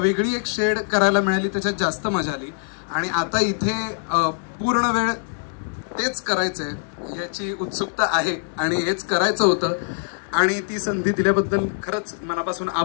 एक शेड करायला मिळाली त्याच्यात जास्त मजा आली. आणि आता इथे पूर्ण वेळ तेच करायचंय याची उत्सुकता आहे आणि हेच करायचं होतं. आणि ती संधी दिल्याबद्दल खरंच मनापासून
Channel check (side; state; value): right; silent; digital silence